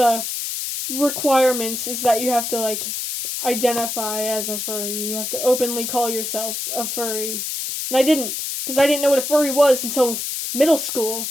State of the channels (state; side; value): noise; left; hiss, 4 dB below the sound